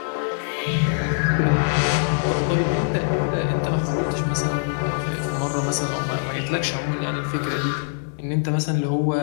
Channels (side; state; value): right; silent; 58 dB below the other